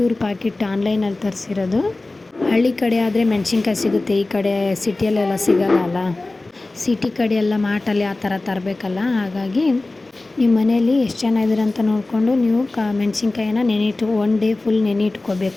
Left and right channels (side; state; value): right; quieter; 3.1 dB